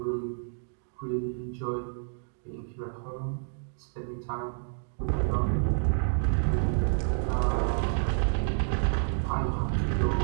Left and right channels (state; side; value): silent; left; digital silence